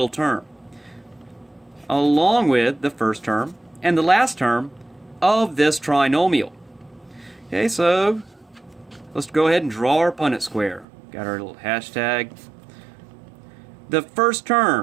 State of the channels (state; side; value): drops out; left; at 10.9 s